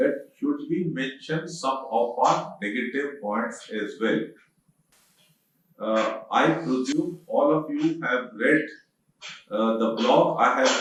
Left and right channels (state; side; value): identical; both; correlation 1.00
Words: should we mention some of our negative points as well. I presume all of you have read the blog I have